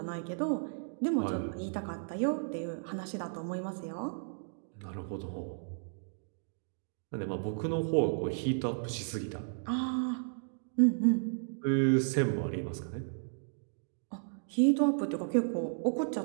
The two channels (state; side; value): silent; left; digital silence